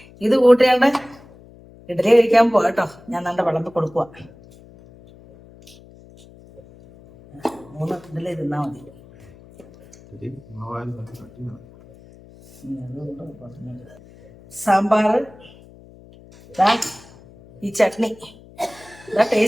ഇത് കൂട്ടിയാണ്ട് ഇഡലി കഴിക്കാൻ പോകട്ടോ. ഞാൻ നല്ല വിളമ്പ് കൊടുക്കുക. 3 ഇഡലി തിന്നാൽ മതി. സാമ്പാർ, ഈ ചട്നി, ഇതാ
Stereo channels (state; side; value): noise; left; hum, 23 dB below the sound